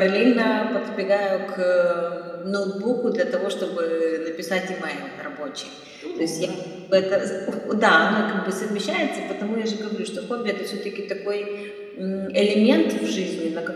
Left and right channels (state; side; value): identical; both; correlation 1.00